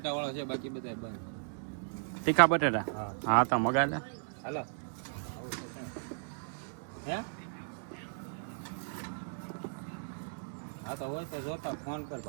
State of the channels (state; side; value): silent; left; digital silence